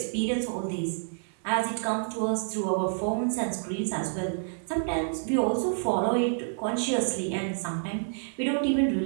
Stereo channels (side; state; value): left; silent; digital silence